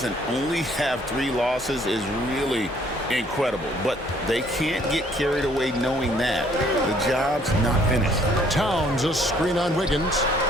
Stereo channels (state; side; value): normal; both; correlation 0.62